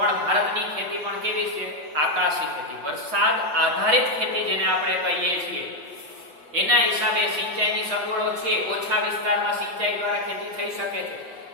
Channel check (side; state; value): left; late; 6.9 ms